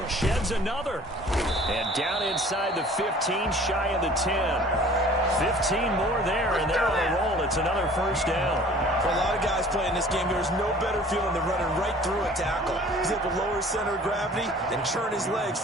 Sheds another. And down inside the 15, shy of the 10. 15 more there, and they're on a roll. It's another first down. For a lot of guys playing this game, there's no better feeling than running right through a tackle. He's able to lower his center of gravity and churn his legs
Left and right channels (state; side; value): normal; both; correlation 0.49